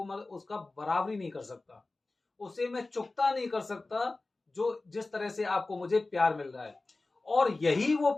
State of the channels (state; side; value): quieter; right; 3.2 dB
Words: उसका बराबरी नहीं कर सकता, उसे मैं चुकता नहीं कर सकता। जो जिस तरह से आपको मुझे प्यार मिल रहा है, और यही वो